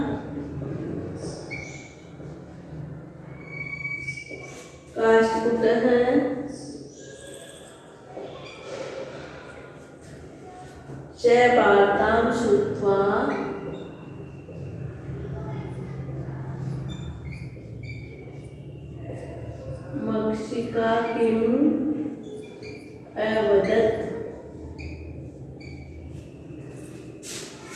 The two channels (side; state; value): both; identical; correlation 1.00